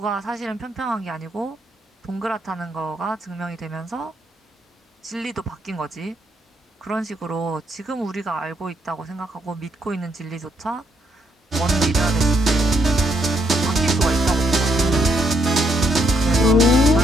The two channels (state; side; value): normal; both; correlation 0.74